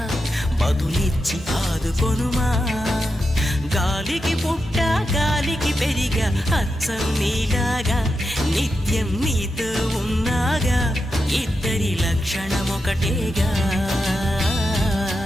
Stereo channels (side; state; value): both; normal; correlation 0.88